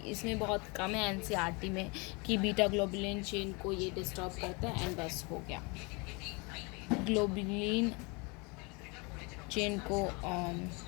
इसमें बहुत कम है NCERT में कि बीटा ग्लोबुलिन चेन को ये डिस्टर्ब करता है। एंड बस हो गया, ग्लोबुलिन चेन को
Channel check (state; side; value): quieter; right; 29.6 dB